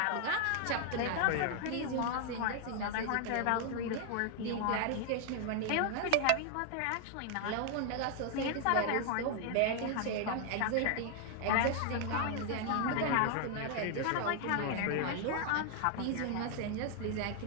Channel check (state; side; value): different; both; correlation 0.00